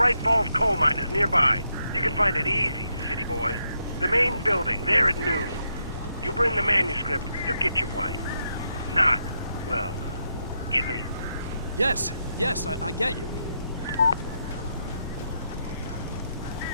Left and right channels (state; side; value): inverted; both; correlation -0.81